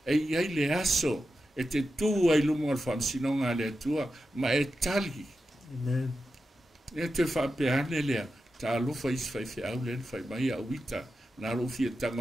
E iai le aso e te tua i lumo al whamsinonga le tua ma e tali. Amen. E te whapeane lea ta alofa is fai fe au len fai mai a wita na rofi e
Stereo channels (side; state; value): both; normal; correlation 0.90